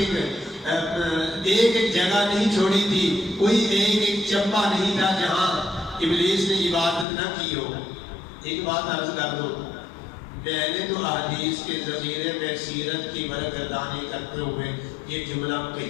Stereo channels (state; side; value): drops out; right; at 7.1 s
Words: ایک جگہ نہیں چھوڑی تھی، کوئی ایک چپا نہیں تھا جہاں ابلیس نے عبادت نہ کی ہو۔ ایک بات عرض کر دو، میں نے تو احادیث کے ذخیرے میں سیرت کی برگردانی کرتے ہوئے یہ جملہ